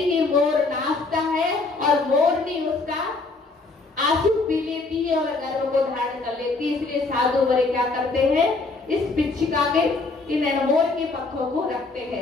मोर नाचता है और मोरनी उसका आंसू पी लेती है और गर्भ को धारण कर लेती है, इसलिए साधु बड़े क्या करते हैं, इस पिच्छिका के, इन मोर के पंखों को रखते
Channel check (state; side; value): quieter; right; 3.6 dB